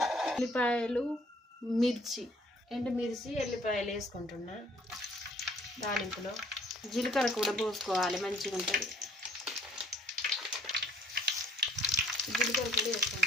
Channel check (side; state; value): both; normal; correlation 0.58